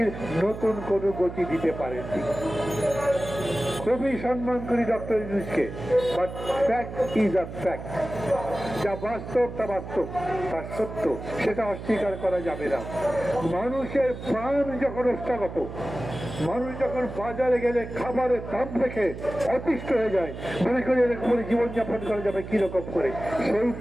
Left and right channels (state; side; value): noise; right; hum, 10 dB below the sound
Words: নতুন কোনো গতি দিতে পারেননি। খুবই সম্মান করি ডক্টর ইউনূসকে, but fact is a fact. যা বাস্তব তা বাস্তব, তা সত্য, সেটা অস্বীকার করা যাবে না। মানুষের প্রাণ যখন অষ্টাগত, মানুষ যখন বাজারে গেলে খাবারের দাম দেখে অতিষ্ঠ হয়ে যায়, মনে করি এরকম করে জীবনযাপন করা যাবে কিরকম করে, সেই